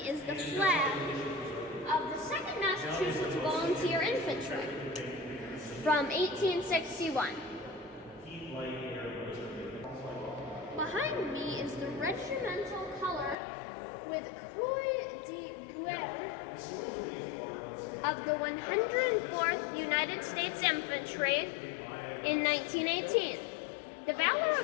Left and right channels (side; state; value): right; drops out; at 13.4 s